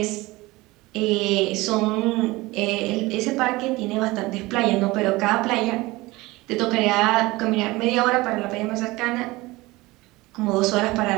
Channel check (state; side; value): quieter; left; 20.9 dB